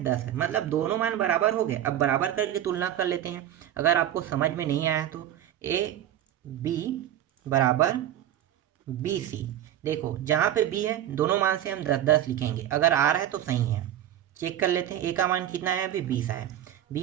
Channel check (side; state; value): left; quieter; 11.6 dB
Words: 10 है। मतलब दोनों मान बराबर हो गए। अब बराबर करके तुलना कर लेते हैं। अगर आपको समझ में नहीं आया तो a/b बराबर b/c। देखो जहाँ पे b है दोनों मान से हम 10 लिखेंगे, अगर आ रहा है तो सही है। चेक कर लेते हैं, a का मान कितना है, अभी 20 आया,